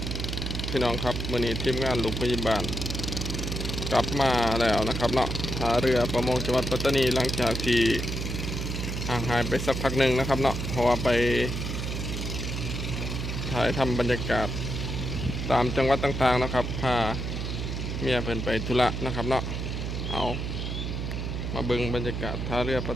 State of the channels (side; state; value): right; noise; hum, 3 dB below the sound